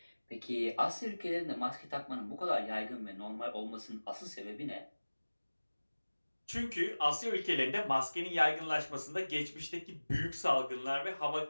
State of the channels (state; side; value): inverted; both; correlation -1.00